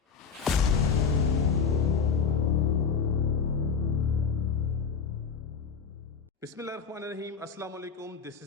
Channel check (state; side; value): quieter; right; 6.0 dB